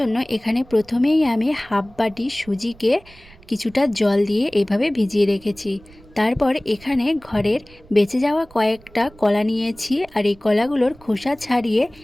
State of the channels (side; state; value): right; noise; rumble, 25 dB below the sound